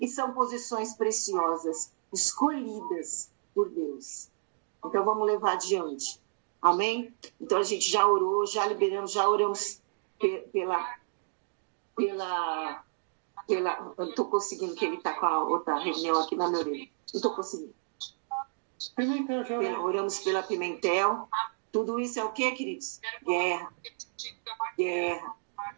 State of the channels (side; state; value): left; silent; digital silence